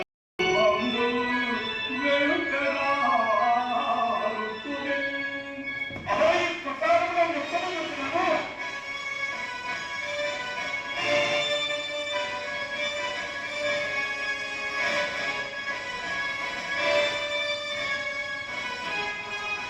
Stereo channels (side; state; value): both; identical; correlation 1.00